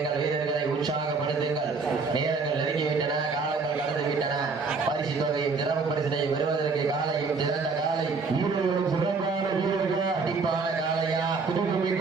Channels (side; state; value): left; quieter; 4.5 dB